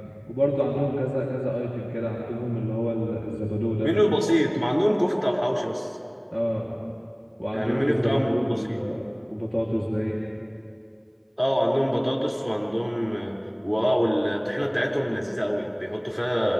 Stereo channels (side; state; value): both; identical; correlation 1.00